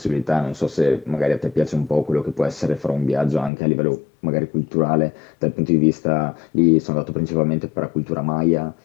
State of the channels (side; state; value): right; drops out; at 3.5 s